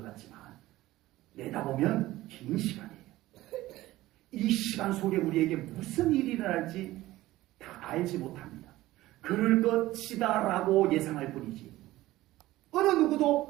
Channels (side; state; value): left; quieter; 16.8 dB